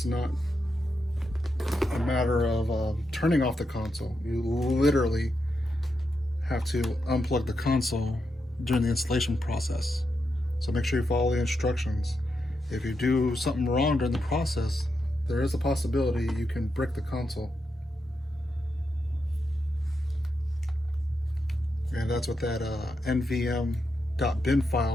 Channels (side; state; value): both; normal; correlation 0.85